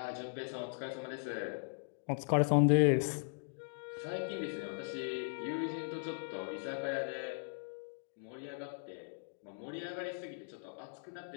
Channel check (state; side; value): silent; right; digital silence